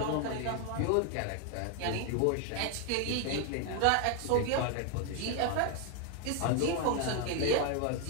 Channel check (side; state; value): both; different; correlation 0.01